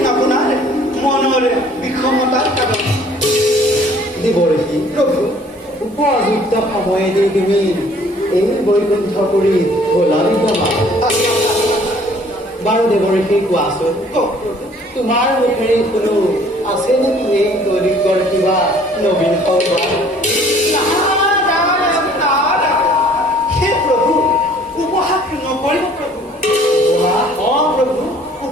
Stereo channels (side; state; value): both; normal; correlation 0.56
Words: আপোনাৰ মনৰ বিষমতাৰ কাৰণ। দেৱৰ্ষি প্ৰভু, উপযুক্ত সময়েদি তুমি এই বৈকুণ্ঠপুৰী গলা বিদ্যমান। বাৰু দেৱৰ্ষি কোৱাচোন, তোমাৰ মুখেৰে কোনো আছে নেকি এই দৈনিকৰ কিবা নবীন সংবাদ? হে প্ৰভু, উপহাস নকৰিব প্ৰভু। প্ৰভু,